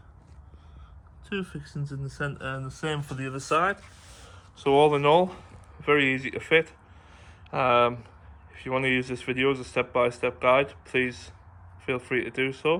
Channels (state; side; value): identical; both; correlation 1.00